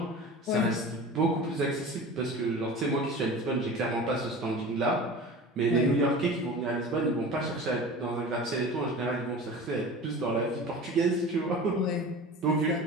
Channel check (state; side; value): normal; both; correlation 0.35